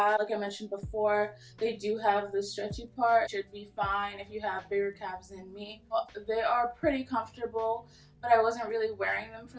Like I mentioned before, they do have the stretchy part. Should be fine if you have bigger calves than me. They are pretty comfortable, but I wasn't really wearing them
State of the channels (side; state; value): both; identical; correlation 1.00